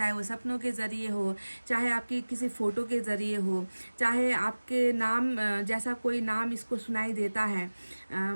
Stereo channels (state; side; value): inverted; both; correlation -1.00